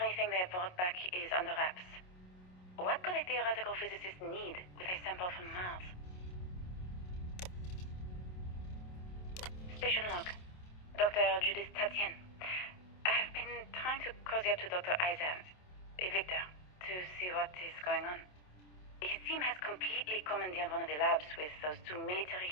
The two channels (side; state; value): right; late; 27 ms